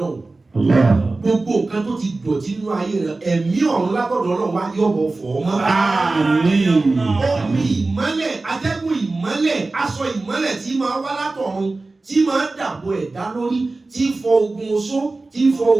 gbogbo nǹkan tó ti dọ̀tí nínú ayé rẹ ẹ̀mí ọ̀run lágbọ̀dọ̀ Ọlọ́run wá yọ̀bọ̀ fọ̀ ọ́ mọ́. omi ìmọ́lẹ̀ atẹ́gùn ìmọ́lẹ̀ aṣọ ìmọ́lẹ̀ tí máa wá látọ̀run tí máa dàbò ẹ̀dá lórí tí fọ ogun oṣó tí fọ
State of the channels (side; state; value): left; quieter; 3.4 dB